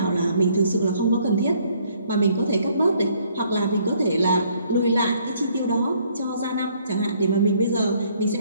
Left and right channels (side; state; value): both; inverted; correlation -0.65